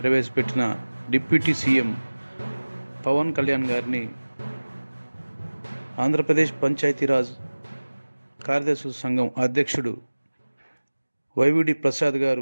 ప్రవేశపెట్టిన డిప్యూటీ సీఎం పవన్ కళ్యాణ్ గారిని ఆంధ్రప్రదేశ్ పంచాయతీరాజ్ కార్యదర్శుల సంఘం అధ్యక్షుడు వైవిడి ప్రసాద్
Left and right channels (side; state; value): both; inverted; correlation -1.00